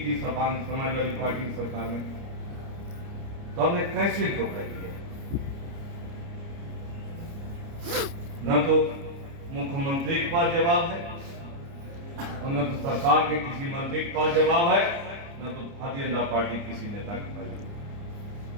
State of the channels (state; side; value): late; left; 29 ms